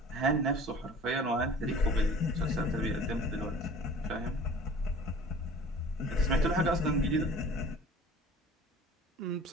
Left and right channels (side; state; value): both; normal; correlation 0.45